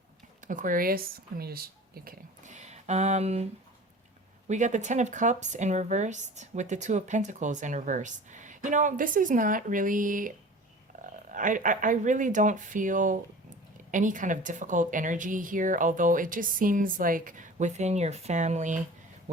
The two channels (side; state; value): both; normal; correlation 0.40